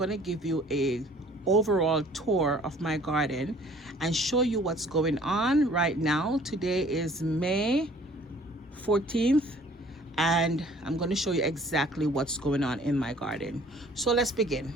to give you a overall tour of my garden and show you what's going on right now. Today is May 14th and I'm going to show you exactly what's going on in my garden. So let's begin.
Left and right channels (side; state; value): both; normal; correlation 0.54